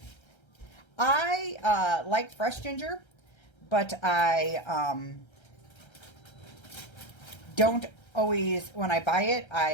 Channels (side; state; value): right; late; 1.3 ms